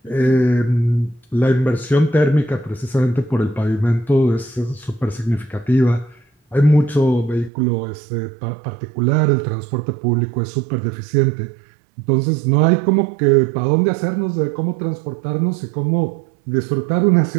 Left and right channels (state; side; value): drops out; left; at 7.5 s